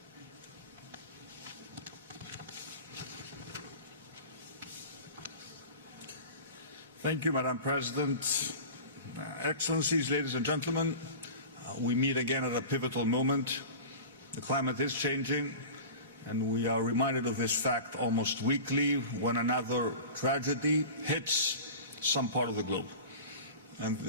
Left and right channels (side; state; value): both; inverted; correlation -0.35